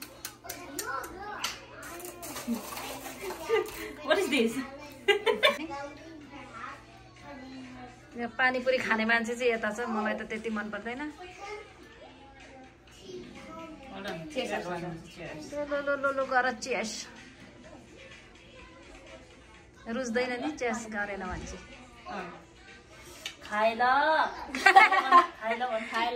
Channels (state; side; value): identical; both; correlation 1.00